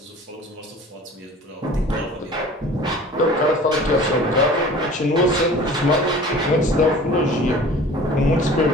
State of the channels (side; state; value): both; normal; correlation 0.44